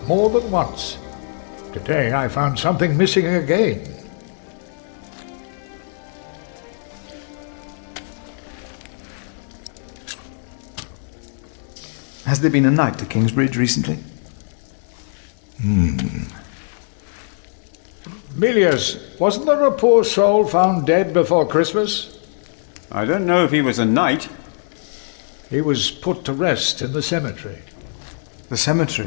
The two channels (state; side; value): silent; right; 65 dB below the other